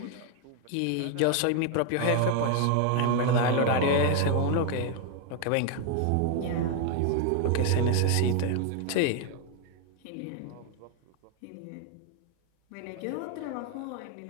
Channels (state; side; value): different; both; correlation 0.00